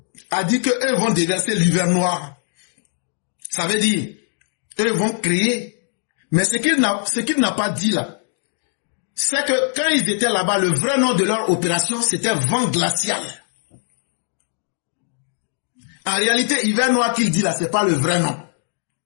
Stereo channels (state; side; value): silent; right; digital silence